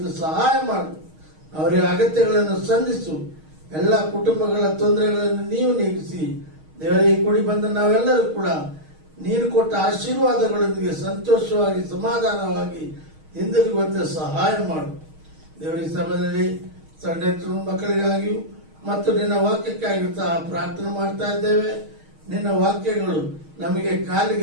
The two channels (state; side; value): late; left; 6.4 ms